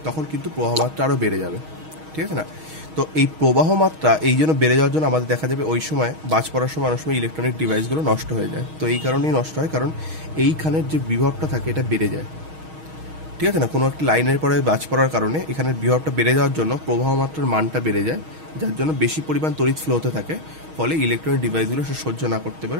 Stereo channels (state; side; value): late; left; 6.4 ms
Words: তখন কিন্তু প্রবাহ মাত্রা আরও বেড়ে যাবে, ঠিক আছে না? তো এই প্রবাহ মাত্রা এই জন্য বেড়ে যাওয়ার জন্য আমাদের দেখা যাবে ওই সময় বাজ পড়ার সময় অনেক সময় ইলেকট্রনিক ডিভাইসগুলো নষ্ট হয়ে যায়। তো এই কারণেই নষ্ট হয়, কারণ এইখানের যে বিভবটা থাকে এটা বেড়ে যায়, ঠিক আছে না? কোনো একটা লাইনের পরে বাজ পড়ার কারণে এখানের বিভবটা বেড়ে যাওয়ার জন্য প্রবাহ মাত্রার মানটা বেড়ে যায়, যার জন্য বেশি পরিমাণ তড়িৎ ফ্লো হতে থাকে, ফলে ইলেকট্রনিক ডিভাইসগুলো সে সহ্য না করতে